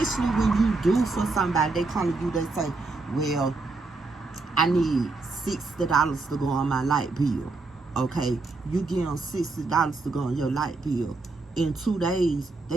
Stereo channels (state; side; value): quieter; left; 3.6 dB